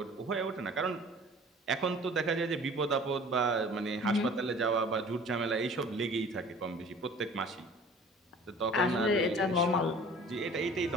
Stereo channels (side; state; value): both; normal; correlation 0.47